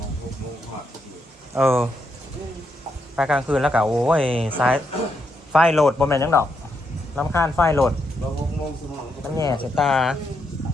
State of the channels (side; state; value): both; normal; correlation 0.80